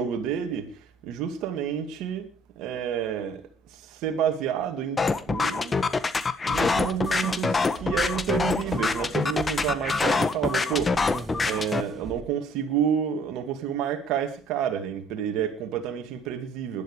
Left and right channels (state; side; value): normal; both; correlation 0.60